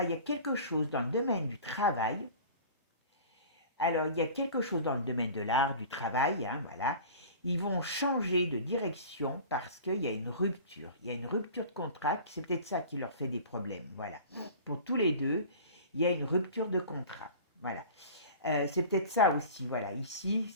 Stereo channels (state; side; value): inverted; both; correlation -0.40